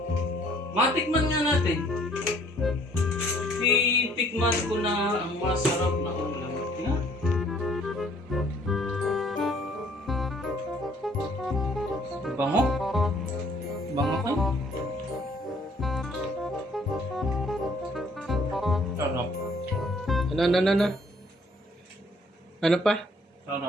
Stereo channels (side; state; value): both; normal; correlation 0.60